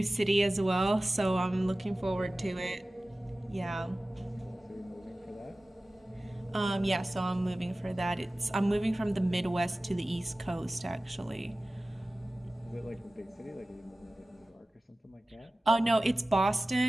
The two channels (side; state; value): both; normal; correlation 0.97